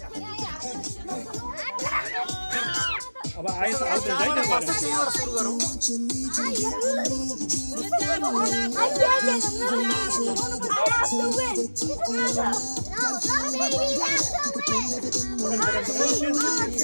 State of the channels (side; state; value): both; inverted; correlation -1.00